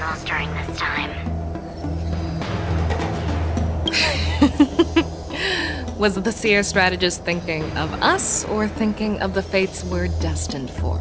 during this time. Was the seer strategist thinking of us or thinking of the fates we're destined for?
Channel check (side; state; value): both; identical; correlation 1.00